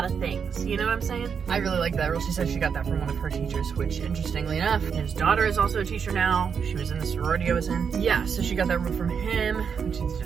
of things. You know what I'm saying? I really like that rule. She said she got that from one of her teachers, which interestingly enough, his daughter is also a teacher now. She was in the sorority I was in. Yeah, so she got that rule from him, which is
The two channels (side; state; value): left; quieter; 6.6 dB